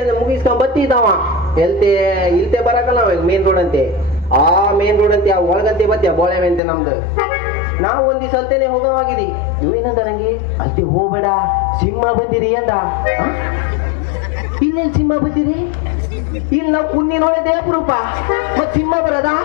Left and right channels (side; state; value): right; drops out; at 6.6 s